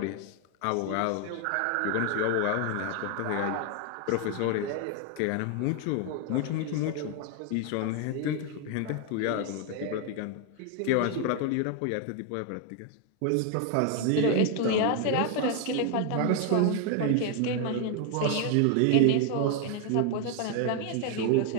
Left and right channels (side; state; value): both; different; correlation 0.01